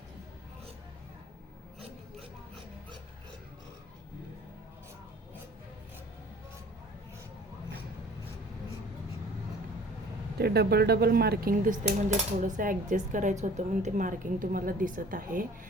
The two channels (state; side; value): normal; both; correlation 0.49